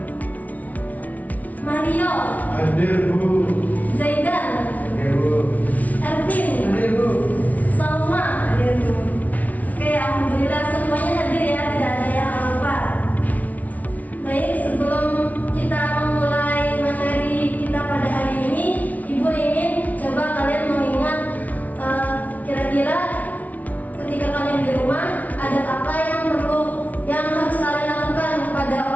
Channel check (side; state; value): right; late; 0.072 ms